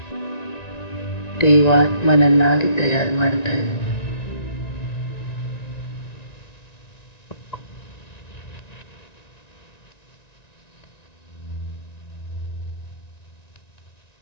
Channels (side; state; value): right; late; 1.9 ms